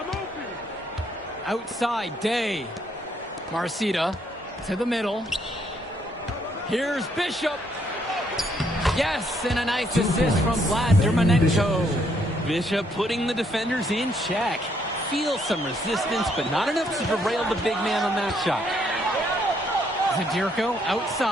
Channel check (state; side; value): normal; both; correlation 0.71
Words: Outside, Day. Marcita to the middle. Here's Bishop. Yes, and a nice assist from Vlad Dermonenko. Bishop putting the defenders in check. Feels some resistance, but not enough to derail the big man on that shot. Zadirko